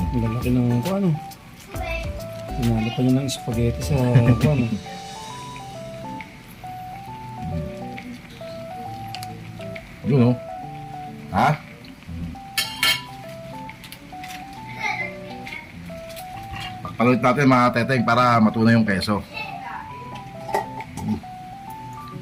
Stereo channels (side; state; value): both; identical; correlation 1.00